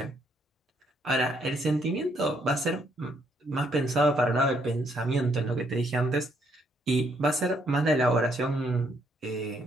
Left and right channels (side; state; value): both; normal; correlation 0.71